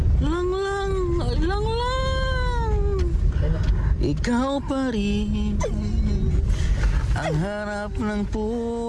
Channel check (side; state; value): both; identical; correlation 1.00